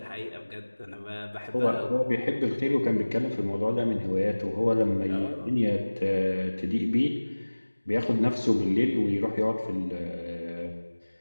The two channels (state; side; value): inverted; both; correlation -1.00